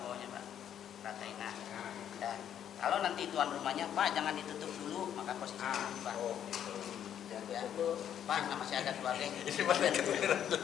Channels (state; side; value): quieter; right; 9.8 dB